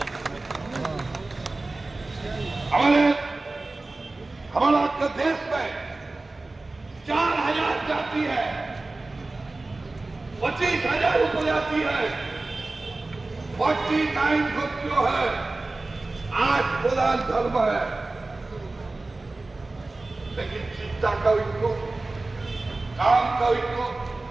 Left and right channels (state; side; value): quieter; left; 3.2 dB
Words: हमारा आपका देश में 4000 जाति है, 25,000 उपजाति है, 49 ग्रुप जो है, 8 प्रधान धर्म है। लेकिन चिंता का उनको, काम का उनको,